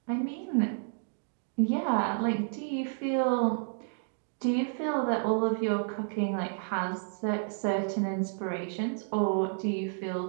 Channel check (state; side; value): silent; left; digital silence